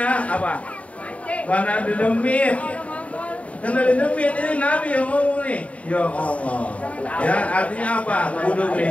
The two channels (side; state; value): right; late; 0.066 ms